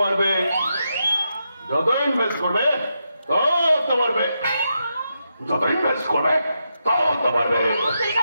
যত ইনভেস্ট করবে তত বাড়বে, যত ইনভেস্ট করবে তত বাড়বে।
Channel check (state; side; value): inverted; both; correlation -0.84